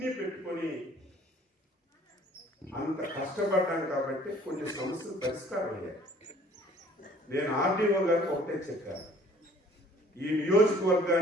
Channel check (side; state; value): both; normal; correlation 0.54